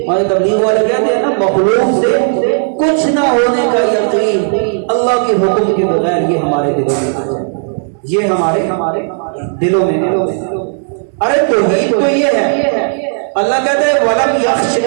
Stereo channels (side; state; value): left; silent; digital silence